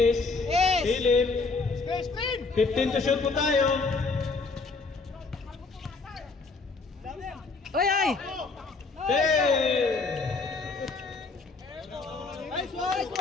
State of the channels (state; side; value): quieter; right; 4.1 dB